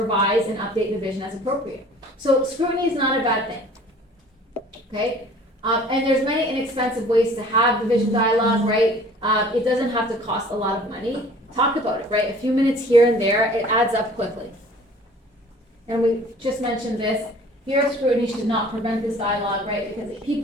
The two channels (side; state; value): both; normal; correlation 0.49